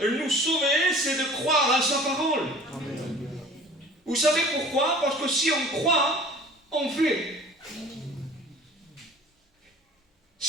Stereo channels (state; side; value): normal; both; correlation 0.45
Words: nous sauver, c'est de croire en sa parole. Amen. Vous savez pourquoi? Parce que si on croit, on fait.